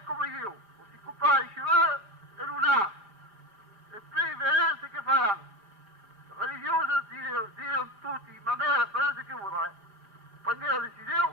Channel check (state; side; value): late; left; 5.0 ms